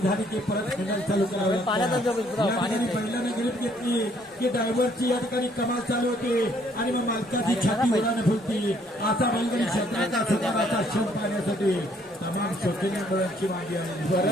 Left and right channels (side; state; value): both; normal; correlation 0.65